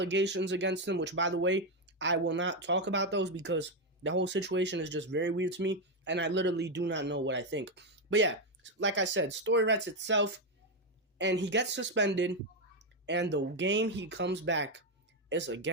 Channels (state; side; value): normal; both; correlation 0.06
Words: against him, which, by the way, I will not talk about those because the whole situation is just very weird to me, and I literally do not know what I think. But yeah, like I said, story writes itself, and he gets suspended, and the game he comes back is